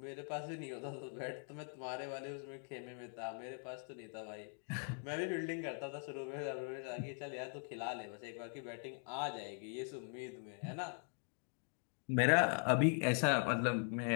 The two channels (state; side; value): silent; right; 50 dB below the other